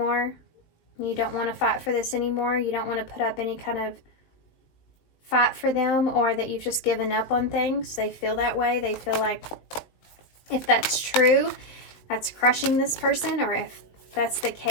You don't want to fight for this anymore. You don't want to put up any kind of fight for them, or that you've just given up on things. They feel that way. They feel like if that's true, that's crushing this person, or if that's the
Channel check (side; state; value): right; late; 19 ms